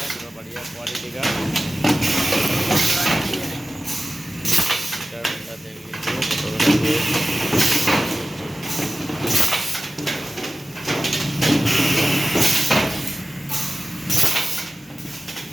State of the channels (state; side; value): normal; both; correlation 0.95